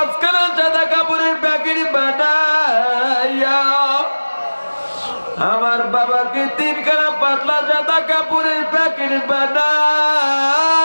সাদা কাপড়ের প্যাকেট বানাইয়া, আমার বাবাকে 3খানা পাতলা সাদা কাপড়ের প্যাকেট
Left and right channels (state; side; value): inverted; both; correlation -1.00